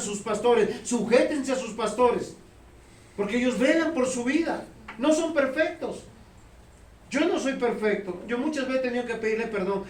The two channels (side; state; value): both; identical; correlation 1.00